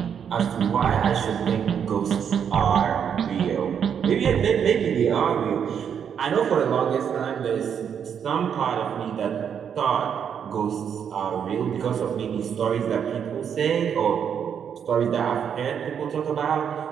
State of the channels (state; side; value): quieter; left; 7.9 dB